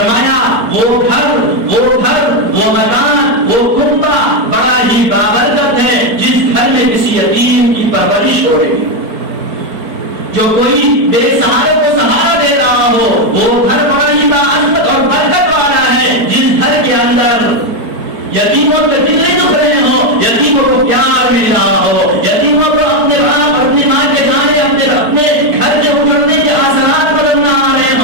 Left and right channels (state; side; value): late; left; 4.5 ms